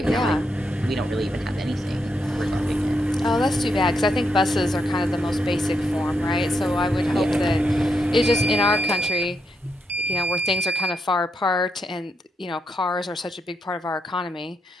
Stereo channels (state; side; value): normal; both; correlation 0.82